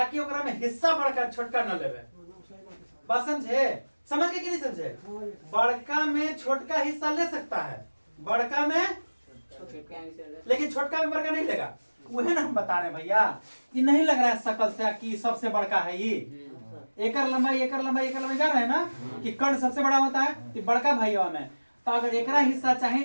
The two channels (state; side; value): inverted; both; correlation -1.00